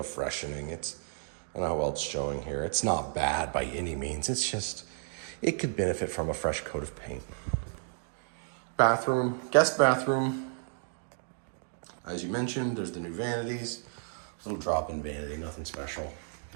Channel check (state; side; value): silent; left; 56 dB below the other